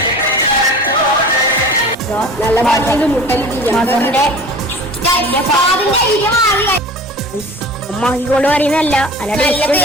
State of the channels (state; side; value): normal; both; correlation 0.40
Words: നല്ല മകന്റെ അമ്മാക്കിക്കൊണ്ട് പറയുന്നല്ല,